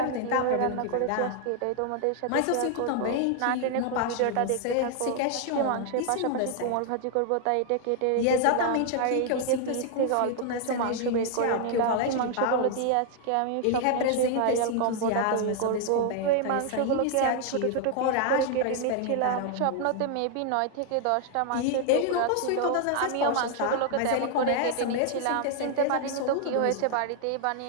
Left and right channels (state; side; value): different; both; correlation 0.00